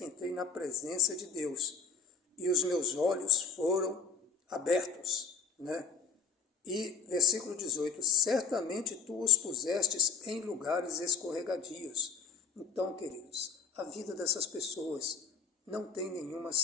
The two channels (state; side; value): quieter; right; 5.8 dB